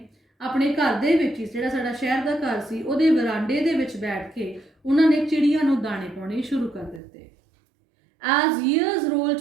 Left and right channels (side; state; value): left; drops out; at 7.0 s